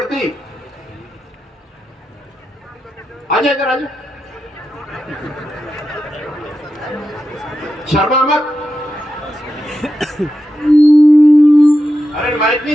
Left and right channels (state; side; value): normal; both; correlation 0.88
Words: आजा इधर आजा, शर्मा मत। अरे माइक नहीं,